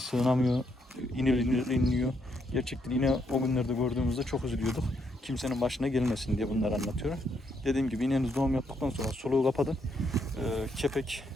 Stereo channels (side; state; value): both; normal; correlation 0.76